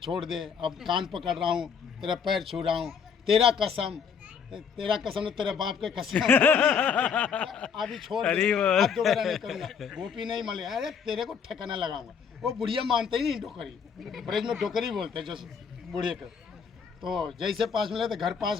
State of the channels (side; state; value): right; quieter; 6.7 dB